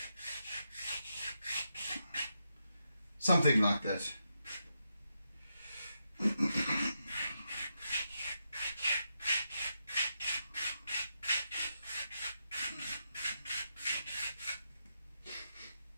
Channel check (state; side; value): inverted; both; correlation -0.84